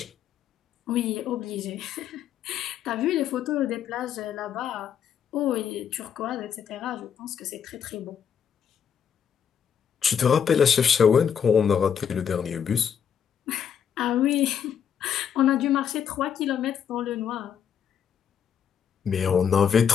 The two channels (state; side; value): quieter; right; 8.0 dB